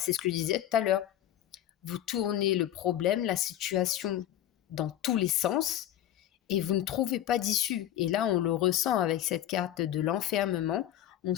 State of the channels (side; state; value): right; quieter; 12.0 dB